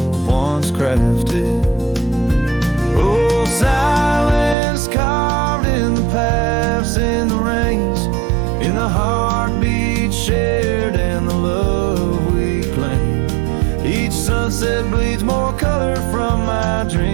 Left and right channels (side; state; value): left; drops out; at 4.5 s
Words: once crafted. Oh, silence carved in the paths, in the rains, in the heartbeat shared and the love we claim. Each sunset bleeds more color from my